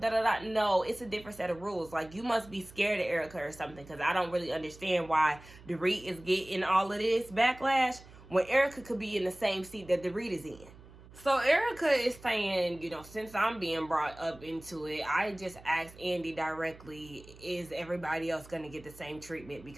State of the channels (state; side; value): noise; right; hum, 20 dB below the sound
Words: No, it's a different set of rules. Like, you must be scared of Erica or something, because I don't really understand why Dorit is getting all of this backlash when Erica could be in the same seat that Dorit is in. So Erica is saying, you know, since I'm being brought up into it, I just asked Andy directly, is everybody else going to get the same treatment?